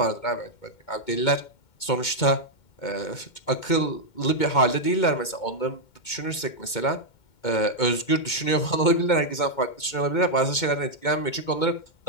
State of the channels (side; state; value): right; late; 2.2 ms